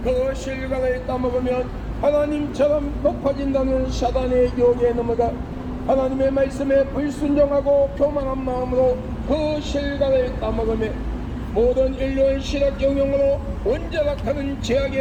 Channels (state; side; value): identical; both; correlation 1.00